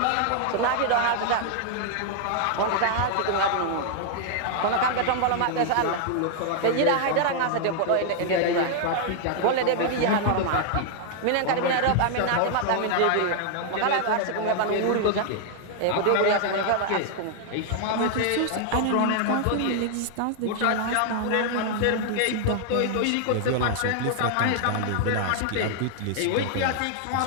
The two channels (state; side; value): different; both; correlation 0.00